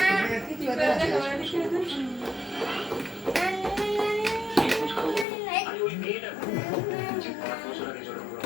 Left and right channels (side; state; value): right; drops out; at 5.2 s